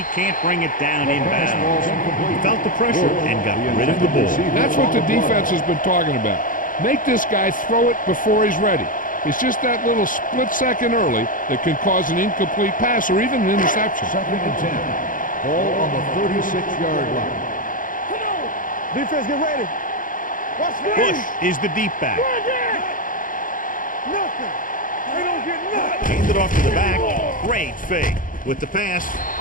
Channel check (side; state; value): right; late; 0.39 ms